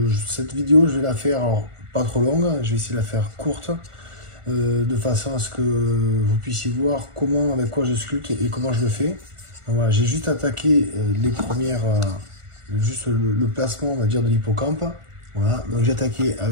Cette vidéo, je vais la faire, alors, pas trop longue, je vais essayer de la faire courte, de façon à ce que vous puissiez voir comment, avec quoi je sculpte et comment je le fais. Donc voilà, j'ai juste attaqué les premières, juste le placement, on va dire, de l'hippocampe. Voilà, donc j'ai attaqué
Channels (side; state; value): left; late; 1.4 ms